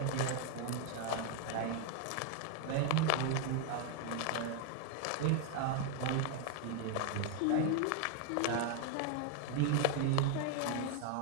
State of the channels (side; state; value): both; different; correlation 0.01